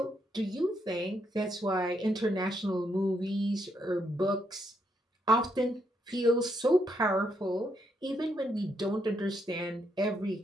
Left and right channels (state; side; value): normal; both; correlation 0.77